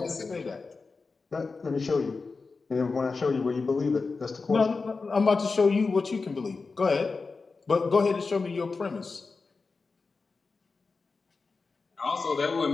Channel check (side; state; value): right; quieter; 4.3 dB